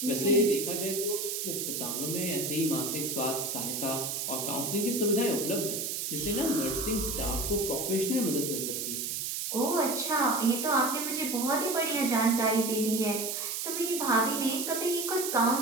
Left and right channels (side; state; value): right; noise; hiss, 2 dB below the sound